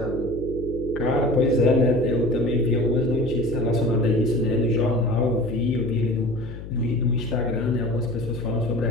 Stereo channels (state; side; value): noise; left; hum, 11 dB below the sound